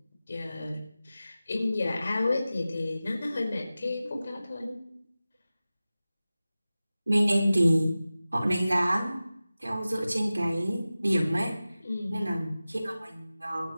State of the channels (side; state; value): both; inverted; correlation -0.96